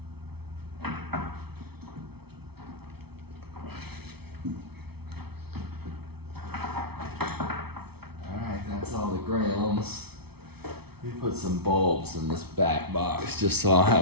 That's all the grounds. Let me put some bulbs in this back box just so I'll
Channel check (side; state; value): left; late; 0.97 ms